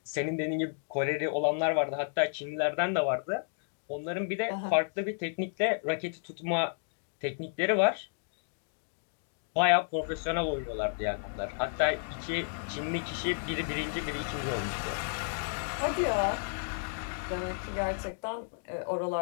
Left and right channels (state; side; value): silent; right; digital silence